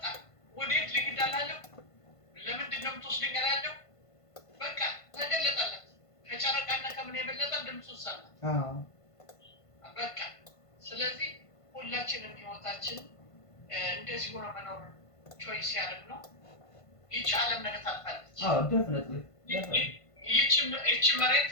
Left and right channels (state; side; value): late; right; 1.5 ms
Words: ወዴት ልሂድ አላለው። ለምንድን ነው የምትወስደኝ አላለው። በቃ ተገለጠለት። ከጨረቃና ከምን የበለጠ ድምፁን ሰማ። በቃ ስለዚህ ሁላችንም ህይወታችን እንደዚህ ሆኖ መኖር ቾይስ ያደርግ ነው። ይቺ ዓለም ነገ ታልፋለች። definitely ይቺ መሬት